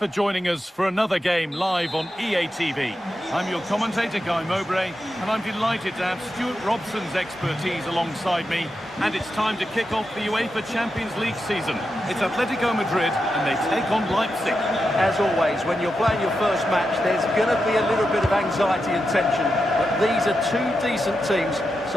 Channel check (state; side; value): normal; both; correlation 0.88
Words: joining us for another game live on EA TV. I'm your commentator, Guy Mowbray, and I'm delighted to have Stuart Robson's expertise alongside me. And it's time to kick off the UEFA Champions League season. It's Atletico Madrid and they take on Leipzig. As always, when you're playing your first match, there's going to be a little bit of anxiety and tension. But these are two decent teams,